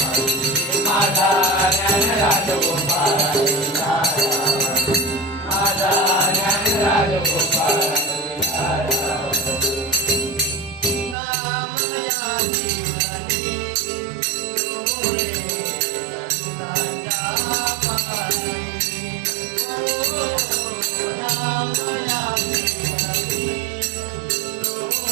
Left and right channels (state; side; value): drops out; left; at 11.2 s